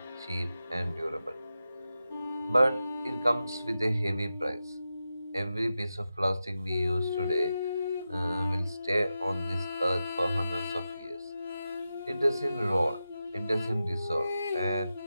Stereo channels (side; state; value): both; inverted; correlation -0.90